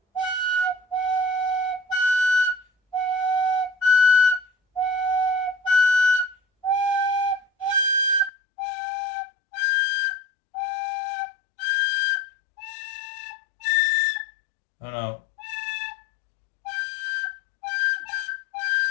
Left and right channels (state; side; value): drops out; right; at 8.3 s